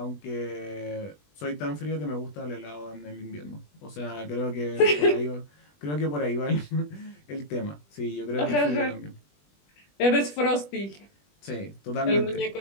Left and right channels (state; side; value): late; right; 20 ms